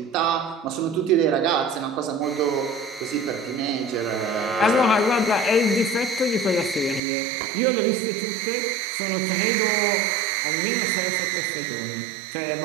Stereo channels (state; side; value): drops out; left; at 7.0 s